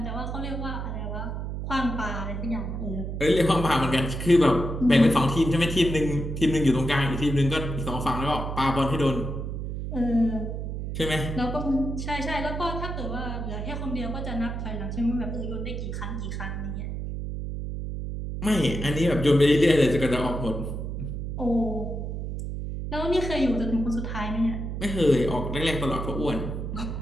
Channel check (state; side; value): noise; right; hum, 5 dB below the sound